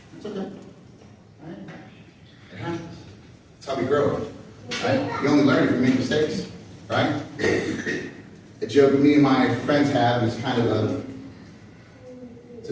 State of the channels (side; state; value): both; identical; correlation 1.00